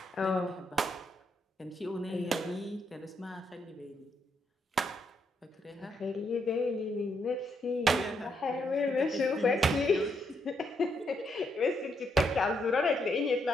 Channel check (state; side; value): normal; both; correlation 0.77